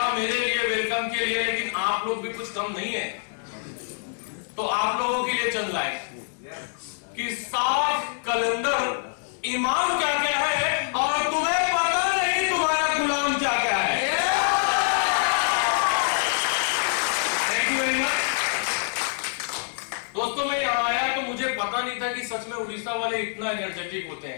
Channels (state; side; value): silent; right; 61 dB below the other